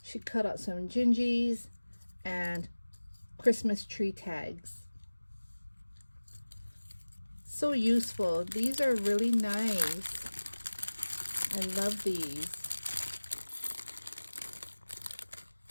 She cut out some gingies and Christmas tree tags. So useful. These are really nice. I love these.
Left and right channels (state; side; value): inverted; both; correlation -1.00